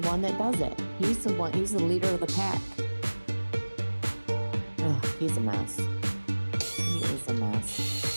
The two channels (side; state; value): both; inverted; correlation -1.00